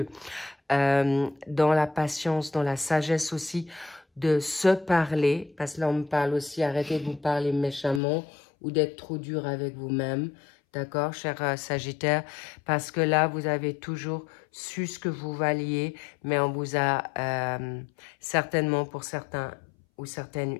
dans la patience, dans la sagesse aussi, de se parler, parce que là on me parle aussi, arrêtez de vous parler méchamment ou d'être trop dur avec vous-même, d'accord, cher Sagittaire, parce que là vous avez toujours su ce que vous valiez, mais on vous a certainement pour certains ou certaines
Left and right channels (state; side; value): drops out; right; at 8.0 s